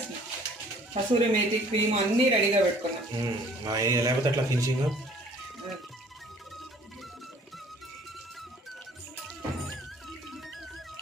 కసూరి మేతి క్రీమ్ అన్నీ రెడీగా పెట్టుకున్నాం. లేకపోతే అట్లా ఫినిషింగ్.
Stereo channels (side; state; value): both; normal; correlation 0.55